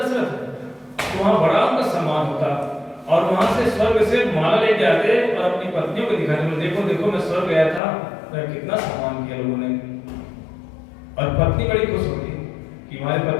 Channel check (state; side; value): drops out; right; at 7.8 s